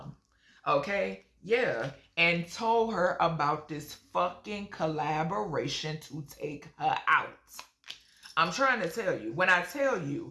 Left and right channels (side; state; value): both; identical; correlation 1.00